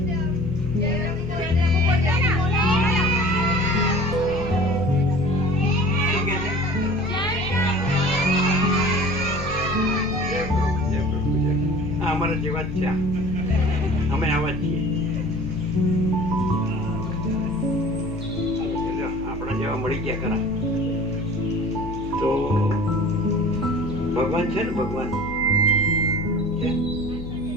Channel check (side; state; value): left; noise; hum, 11 dB below the sound